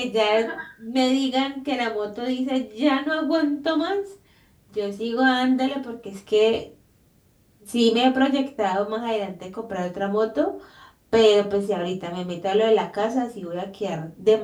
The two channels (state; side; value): identical; both; correlation 1.00